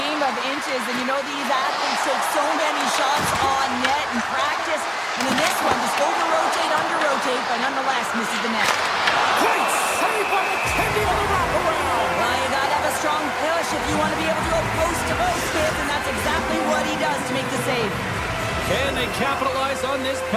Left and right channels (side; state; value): both; identical; correlation 1.00